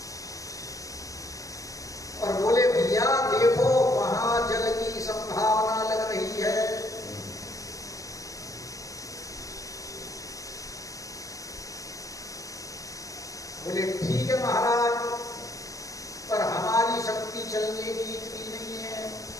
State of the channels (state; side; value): late; right; 0.16 ms